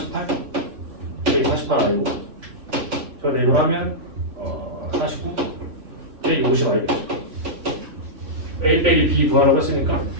여기 48 아니고 저 내로 하면 49 빼기 50 아니겠죠. A 빼기 B 구하라고 했으니까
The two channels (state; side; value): late; left; 3.5 ms